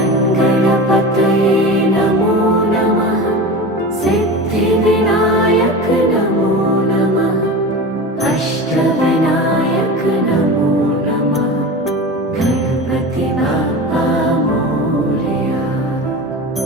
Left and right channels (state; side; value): normal; both; correlation 0.29